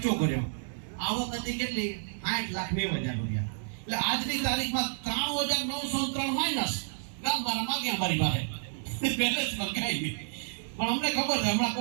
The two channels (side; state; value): left; silent; digital silence